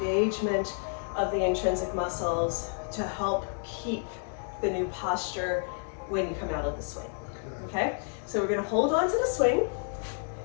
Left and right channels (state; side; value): silent; right; 58 dB below the other